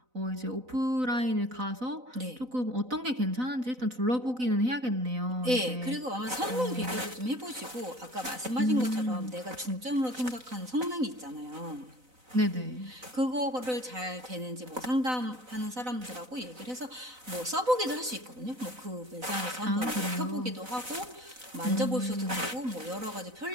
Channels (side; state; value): left; late; 4.0 ms